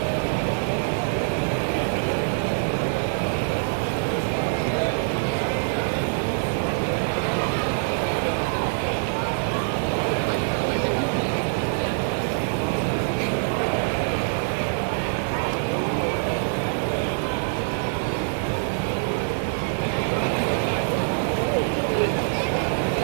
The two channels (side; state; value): left; silent; digital silence